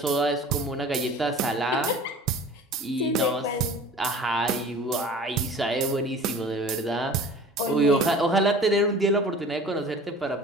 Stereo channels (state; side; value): normal; both; correlation 0.43